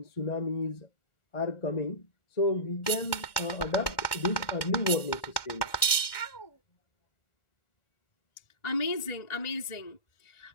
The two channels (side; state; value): right; late; 1.4 ms